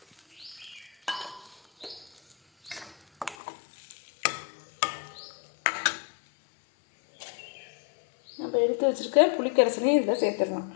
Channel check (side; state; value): right; drops out; at 3.4 s